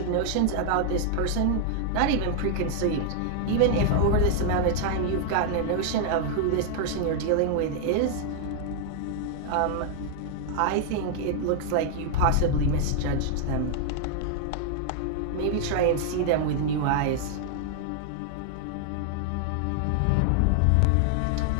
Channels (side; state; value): both; different; correlation 0.00